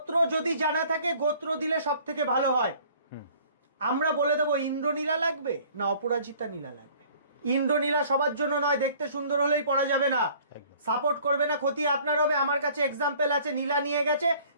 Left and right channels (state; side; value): inverted; both; correlation -0.54